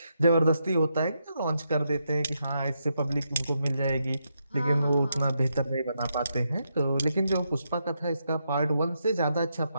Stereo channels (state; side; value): inverted; both; correlation -0.82